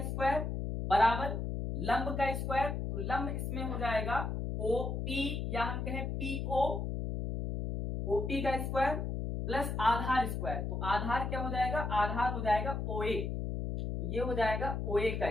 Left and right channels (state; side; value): noise; left; hum, 2 dB below the sound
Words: स्क्वायर बराबर लंब का स्क्वायर, तो लंब इसमें हो जाएगा OP या हम कहें PO, OP का स्क्वायर प्लस आधार स्क्वायर, तो आधार क्या हो जाएगा, आधार हो जाएगा OA, तो ये हो जाएगा OA